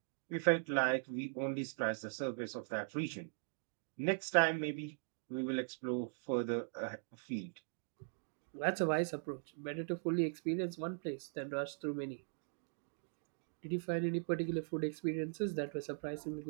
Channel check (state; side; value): silent; left; digital silence